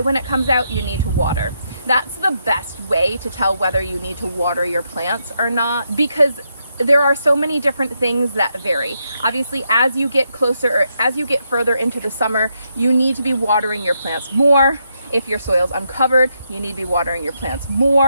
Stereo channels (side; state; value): both; inverted; correlation -0.80